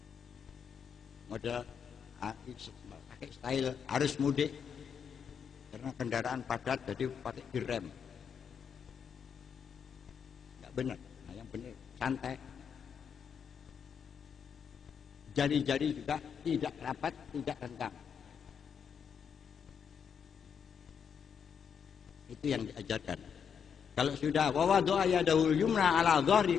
model pakai style harus mudik karena kendaraan padat jadi pakai direm, nggak benar. Nah, yang benar santai. Jari-jari juga tidak rapat, tidak renggang. Itu yang diajarkan. Kalau sudah wawadhu yadahu yumna ala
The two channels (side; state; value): right; quieter; 7.2 dB